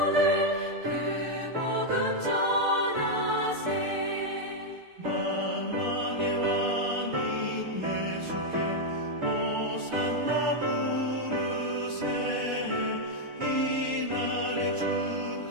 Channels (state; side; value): late; left; 6.7 ms